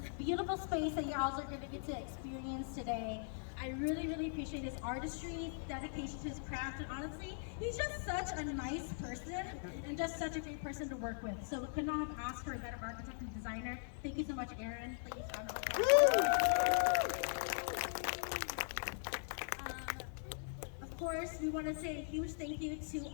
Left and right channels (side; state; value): right; silent; 51 dB below the other